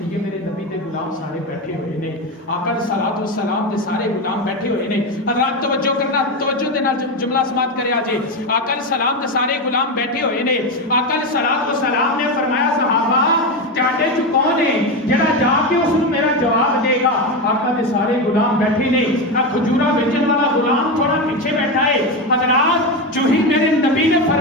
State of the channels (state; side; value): normal; both; correlation 0.15